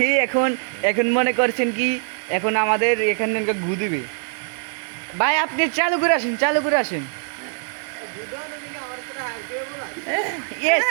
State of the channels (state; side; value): silent; left; 64 dB below the other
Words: এখন মনে করছেন কি এখন আমাদের এখানে ঘু দিবে। ভাই আপনি চালু করে আসেন। ইয়েস